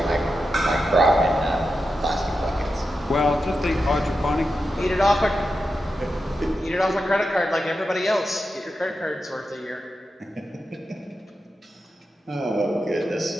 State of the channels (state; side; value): normal; both; correlation 0.89